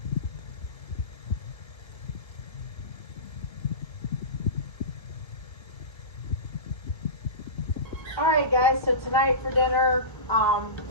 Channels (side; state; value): right; late; 1.3 ms